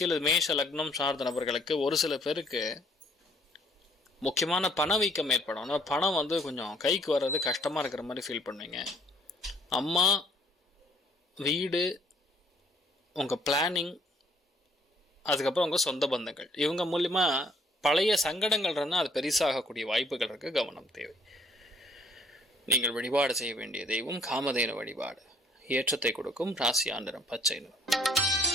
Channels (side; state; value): both; normal; correlation 0.62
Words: மேஷ லக்னம் சார்ந்த நபர்களுக்கு ஒரு சில பேருக்கு முக்கியமான பணவீக்கம் ஏற்படும். ஆனால் பணம் கொஞ்சம் கைக்கு வர்றது கஷ்டமாக இருக்கிற மாதிரி ஃபீல் பண்ணுவீங்க. அம்மா, வீடு, உங்கள் பிளானிங், அதுக்கப்புறம் உங்கள் சொந்த பந்தங்கள், இவங்க மூலிமா பழைய சங்கடங்கள் இருந்தால் அது பெருசாகக்கூடிய வாய்ப்புகள் இருக்குது. கவனம் தேவை. நீங்கள் வழிபாடு செய்ய வேண்டிய தெய்வம் காமதேனு வழிபாடு. ஏற்றத்தை கொடுக்கும் ராசியா நிறம் பச்சை நிறம்.